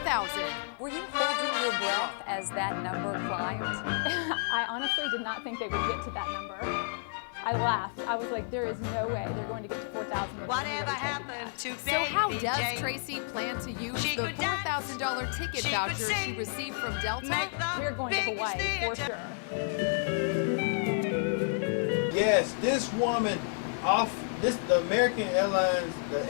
Were you holding your breath as that number climbed? I honestly did not think they would get to that number. I laughed. I was like, there is no way they're going to get to 4,000. Whatever happened to So how Baby does Jane? Tracy plan to use She the could dance, $4,000 ticket she voucher could she sing, received from Delta? We're going to Hawaii for sure. Yes, this woman the American Airlines, the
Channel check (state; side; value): silent; right; 56 dB below the other